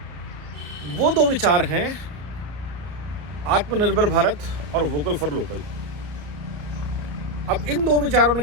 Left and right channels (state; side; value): late; left; 34 ms